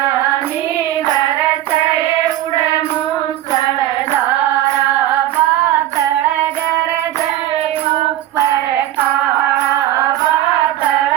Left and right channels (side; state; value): left; quieter; 13.6 dB